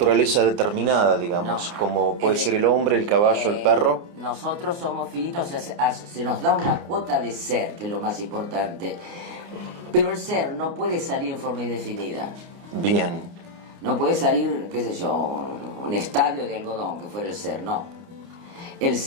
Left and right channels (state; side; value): late; left; 29 ms